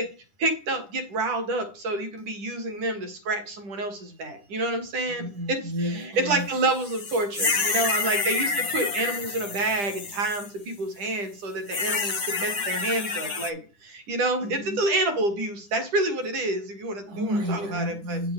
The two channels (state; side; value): late; left; 10 ms